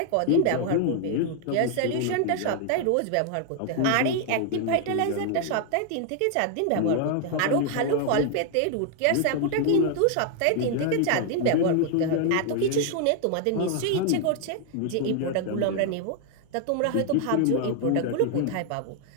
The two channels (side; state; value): both; different; correlation 0.00